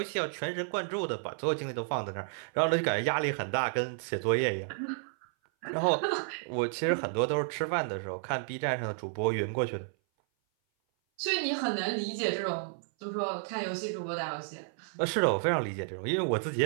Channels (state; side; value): silent; left; 56 dB below the other